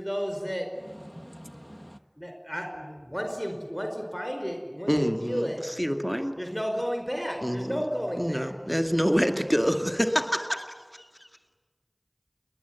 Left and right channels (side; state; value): both; identical; correlation 1.00